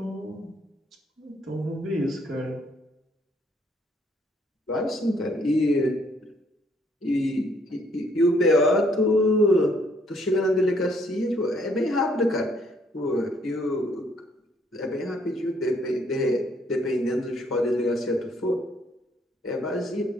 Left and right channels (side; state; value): both; normal; correlation 0.67